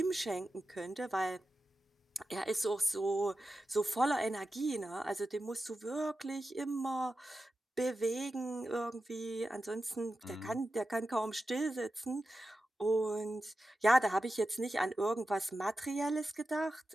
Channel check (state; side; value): normal; both; correlation 0.92